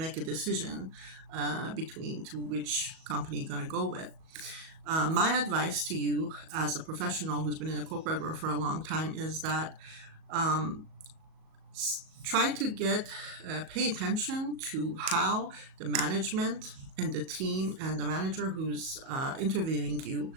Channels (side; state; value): left; late; 37 ms